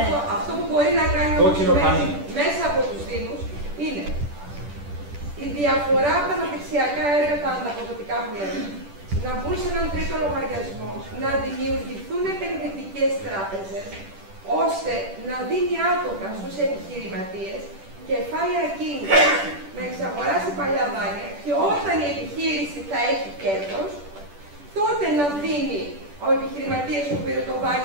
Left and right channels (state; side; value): late; left; 10 ms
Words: αυτό που μπορεί να κάνει μέσα από τους Δήμους είναι η διαφορά από τα αναπτυξιακά έργα, τα ανταποδοτικά που λέμε, να μπουν σε έναν τρίτο λογαριασμό, να δημιουργηθούν επενδυτικές τράπεζες, ώστε να δίνει άτομα στους επιχειρηματίες κεφάλαια κίνητρα να εξαγοράσει παλιά δάνεια και όταν η επιχείρηση θα έχει κέρδος, τότε να δίνει ο επιχειρηματίας που πήρε το